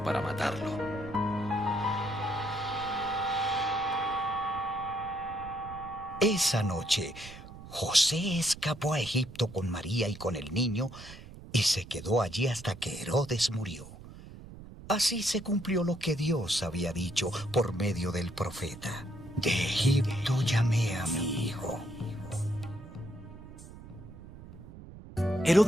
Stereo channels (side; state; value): right; noise; rumble, 16 dB below the sound